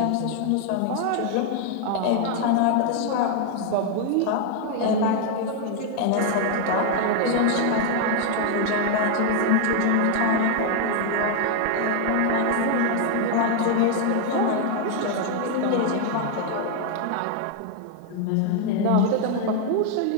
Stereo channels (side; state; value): both; different; correlation 0.00